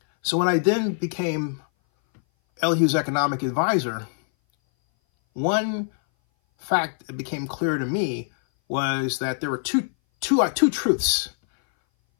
So when I then became Elihu's economic advisor, one fact that became clear to me was that there were two truths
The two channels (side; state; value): right; silent; 59 dB below the other